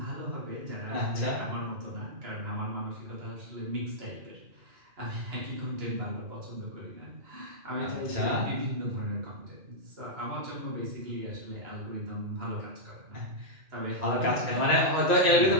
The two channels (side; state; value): left; late; 1.9 ms